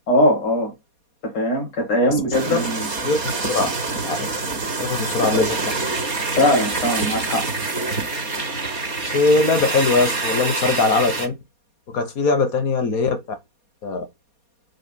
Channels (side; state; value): right; late; 4.2 ms